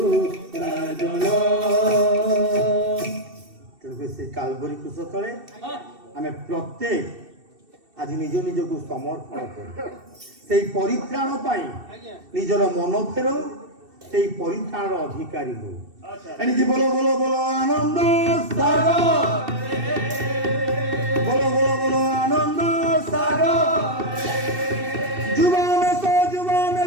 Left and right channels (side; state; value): left; late; 2.7 ms